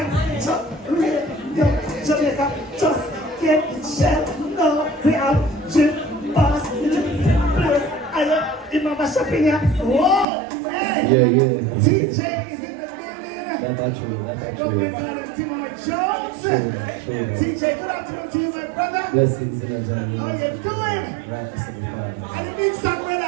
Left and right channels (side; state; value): left; drops out; at 10.2 s